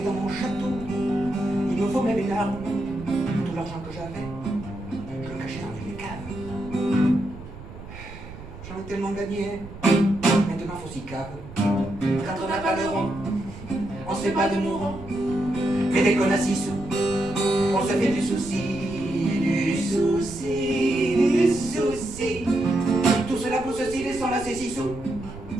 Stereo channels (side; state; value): right; noise; rumble, 14 dB below the sound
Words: dans mon château, il me faut même une arme. Tout l'argent que j'avais, je le cachais dans une cave. J'en ai tellement gagné, maintenant faut s'y cave. Quand on n'a pas de rond, on se fait pas de mourant. Mais dès qu'on a 6 sous, on se fait du souci, du souci, du souci. Tout cela pour ceci, laissant là ces 6 sous.